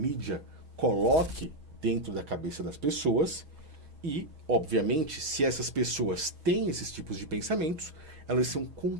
coloque dentro da cabeça das pessoas. E, obviamente, se essas pessoas têm esses tipos de pensamentos, elas são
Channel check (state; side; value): late; left; 6.3 ms